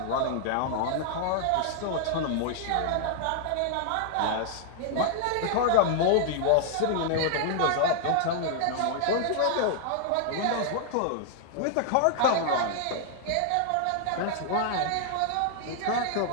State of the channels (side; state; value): both; different; correlation -0.01